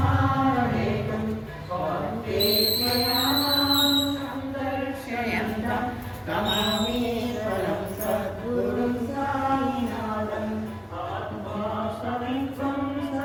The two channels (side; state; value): both; identical; correlation 1.00